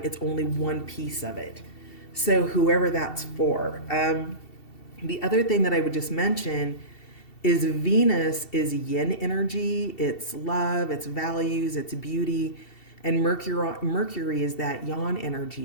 It's only one piece of it. So whoever that's for. The other thing that I would just mention is Venus is yin energy. It's love, it's values, it's beauty. And Mercury is that yang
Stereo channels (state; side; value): late; right; 2.7 ms